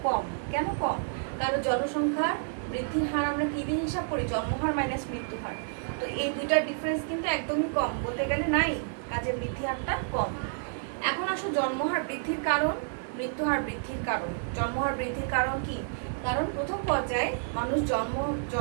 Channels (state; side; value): silent; left; digital silence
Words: কম। কেন কম, কারণ জনসংখ্যার বৃদ্ধির হার আমরা কি দিয়ে হিসাব করি, জন্মহার মাইনাস মৃত্যুহার। তো এই দুইটার ডিফারেন্স কিন্তু একদমই কম, বলতে গেলে নাই, কাজে বৃদ্ধি হারটা কম। এখন আসো জন্মহার বৃদ্ধির কারণ, মৃত্যুহার বৃদ্ধির কারণ। জন্মহার বৃদ্ধির কারণ কি, কারণ প্রথম পর্যায়ে মানুষ